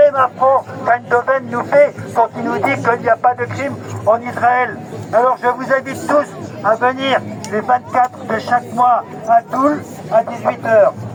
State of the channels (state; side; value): identical; both; correlation 1.00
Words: affront qu'Eindhoven nous fait quand il nous dit qu'il n'y a pas de crime en Israël. Alors je vous invite tous à venir les 24 de chaque mois à Toul à 18h.